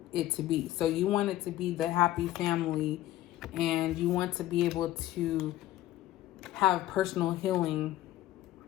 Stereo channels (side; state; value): right; quieter; 14.7 dB